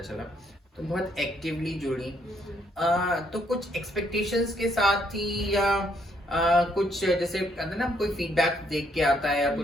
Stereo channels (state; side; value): normal; both; correlation 0.71